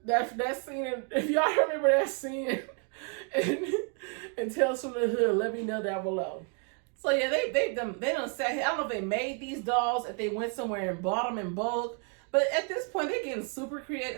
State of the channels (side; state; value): left; quieter; 39.7 dB